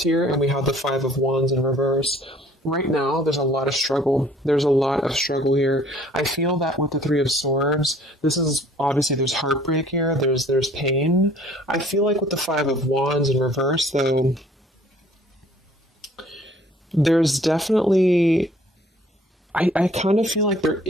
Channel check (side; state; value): both; normal; correlation 0.55